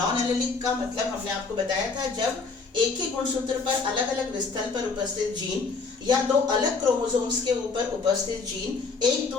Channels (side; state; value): right; quieter; 4.4 dB